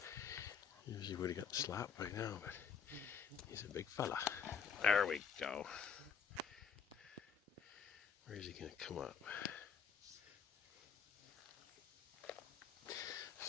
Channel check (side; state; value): right; quieter; 6.5 dB